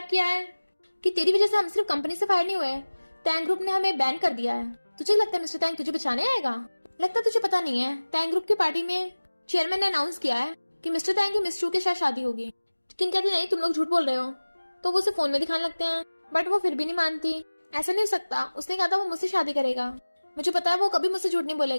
किया है कि तेरी वजह से हम सिर्फ कंपनी से फायर नहीं हुए, टैंग ग्रुप ने हमें बैन कर दिया है। तुझे लगता है मिस्टर टैंग तुझे बचाने आएगा? लगता तुझे पता नहीं है, टैंग ग्रुप की पार्टी में चेयरमैन ने अनाउंस किया है कि मिस्टर टैंग की मिस चू के साथ शादी होगी। किन कहती नहीं तुम लोग झूठ बोल रहे हो। तो वो उसे फोन में दिखाने लगते हैं, बट वो फिर भी नहीं मानती। ऐसा नहीं हो सकता, उसने कहा था वो मुझसे शादी करेगा, मुझे पता है वो कभी मुझसे झूठ नहीं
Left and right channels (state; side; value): inverted; both; correlation -1.00